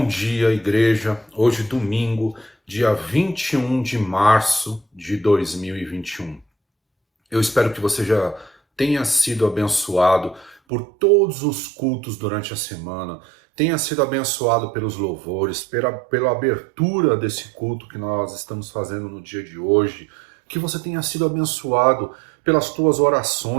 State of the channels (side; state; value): left; drops out; at 10.6 s